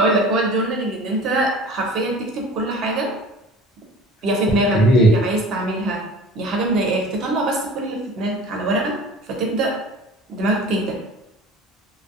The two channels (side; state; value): both; normal; correlation 0.42